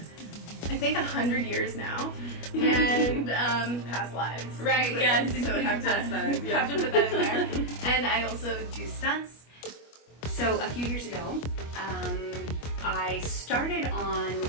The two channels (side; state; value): right; late; 25 ms